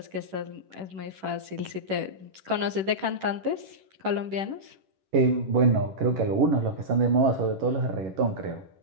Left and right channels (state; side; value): late; left; 10 ms